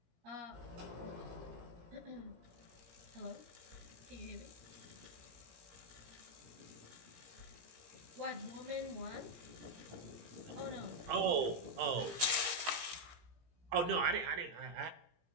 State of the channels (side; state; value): left; late; 17 ms